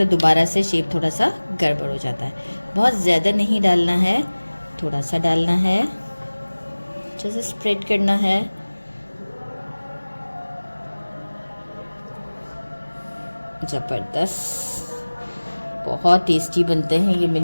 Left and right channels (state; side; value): inverted; both; correlation -1.00